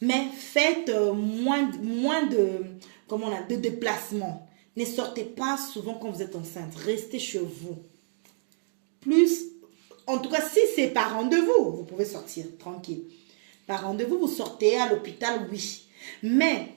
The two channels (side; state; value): left; silent; digital silence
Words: Mais faites moins de déplacements. Ne sortez pas souvent quand vous êtes enceinte. Restez chez vous. En tout cas, si c'est par rendez-vous, vous pouvez sortir tranquille. Par rendez-vous, vous sortez à l'hôpital, oui. Mais